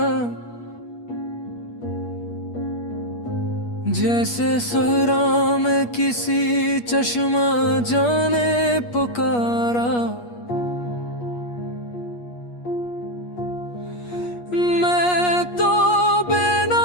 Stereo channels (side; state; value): right; late; 8.4 ms